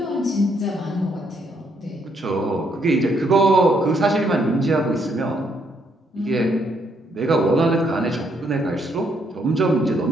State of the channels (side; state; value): both; normal; correlation 0.72